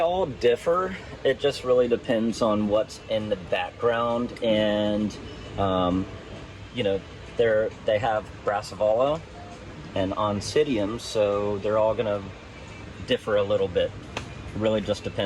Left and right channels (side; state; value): both; identical; correlation 1.00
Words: differ. It just really depends on what's in the background, and they have brassavola and oncidium, so they're all gonna differ a little bit. It really just